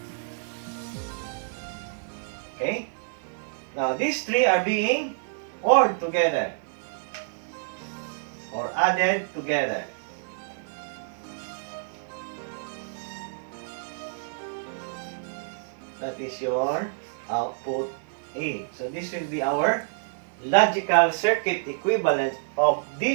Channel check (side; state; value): left; silent; digital silence